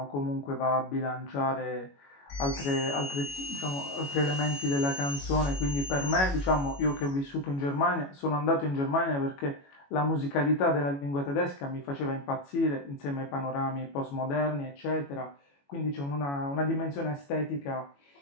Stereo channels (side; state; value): right; late; 21 ms